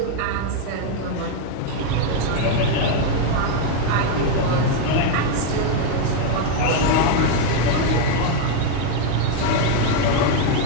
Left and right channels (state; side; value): different; both; correlation 0.01